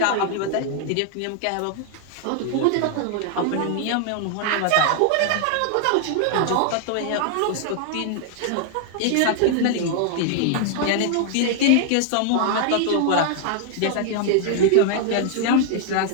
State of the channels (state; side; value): different; both; correlation 0.00